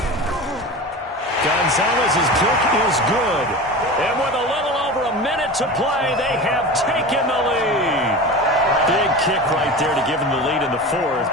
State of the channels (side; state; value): both; normal; correlation 0.31